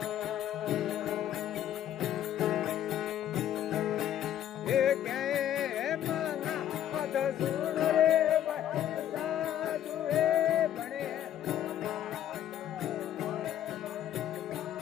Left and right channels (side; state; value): right; quieter; 11.1 dB